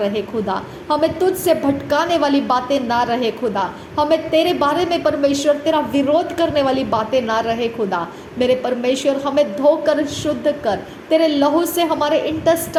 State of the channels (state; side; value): identical; both; correlation 1.00